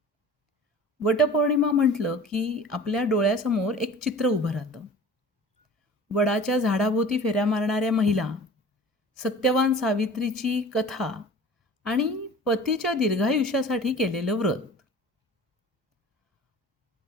वटपौर्णिमा म्हटलं की आपल्या डोळ्यासमोर एक चित्र उभं राहतं. वडाच्या झाडाभोवती फेऱ्या मारणाऱ्या महिला, सत्यवान सावित्रीची कथा आणि पतीच्या दीर्घायुष्यासाठी केलेलं व्रत.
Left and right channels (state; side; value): normal; both; correlation 0.42